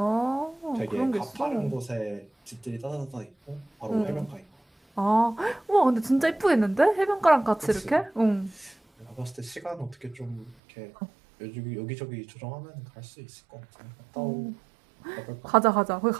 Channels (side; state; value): left; drops out; at 10.6 s